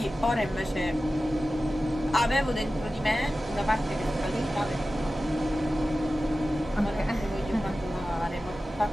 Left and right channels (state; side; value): normal; both; correlation 0.95